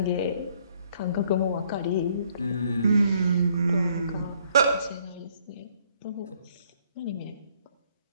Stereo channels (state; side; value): inverted; both; correlation -0.66